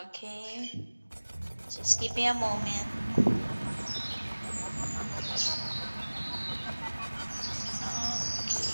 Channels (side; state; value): both; inverted; correlation -1.00